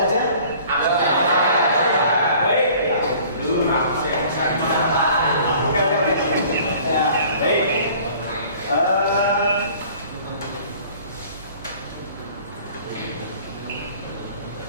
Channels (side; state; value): both; inverted; correlation -0.50